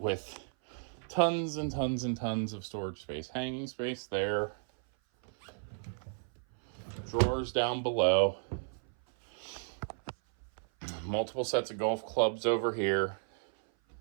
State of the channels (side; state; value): left; silent; 55 dB below the other